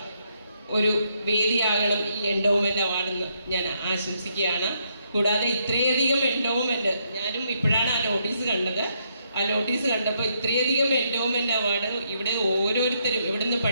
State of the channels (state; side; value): inverted; both; correlation -0.76